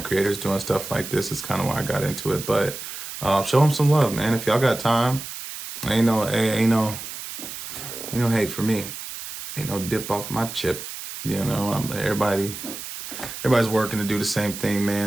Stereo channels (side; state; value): right; noise; hiss, 9 dB below the sound